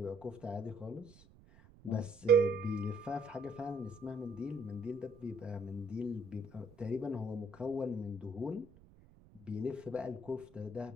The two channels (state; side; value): noise; right; rumble, 24 dB below the sound